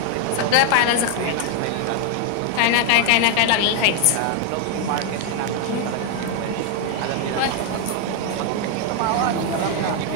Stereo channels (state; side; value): different; both; correlation 0.00